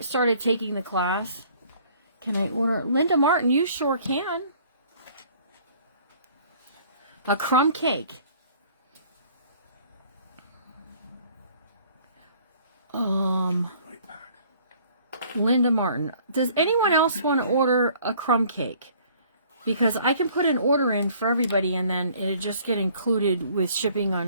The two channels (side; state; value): both; inverted; correlation -0.56